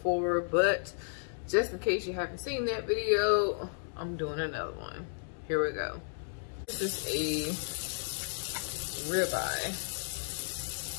but just in case you haven't seen that video, I'm doing another one. Here we go. This is a ribeye,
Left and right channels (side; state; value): right; silent; digital silence